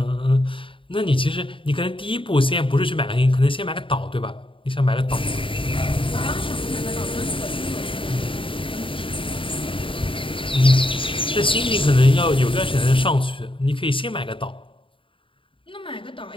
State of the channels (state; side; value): late; right; 0.25 ms